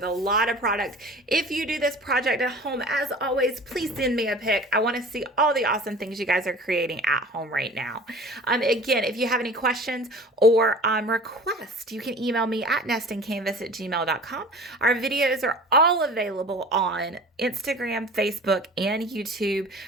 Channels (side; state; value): both; normal; correlation 0.42